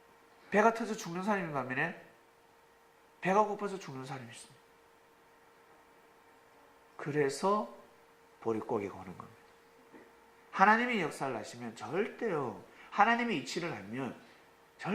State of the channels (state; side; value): identical; both; correlation 1.00